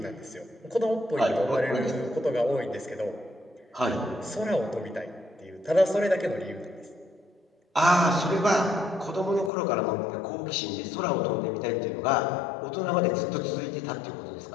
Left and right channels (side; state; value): right; drops out; at 9.5 s